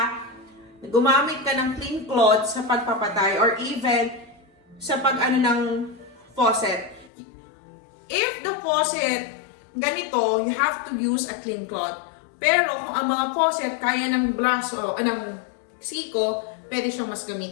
gumamit ka ng clean cloth sa pagpapatay or even sa pag-ano ng faucet. If the faucet ganito, you have to use a clean cloth. Pero kung ang mga faucet kaya ng braso, ng siko, pwede siyang mas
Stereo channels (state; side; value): drops out; right; at 7.1 s